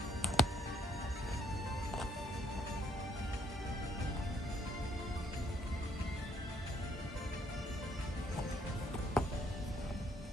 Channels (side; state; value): both; normal; correlation 0.68